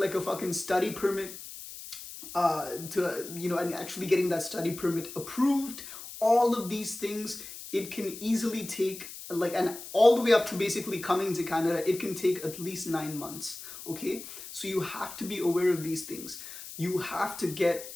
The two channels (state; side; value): noise; left; hiss, 12 dB below the sound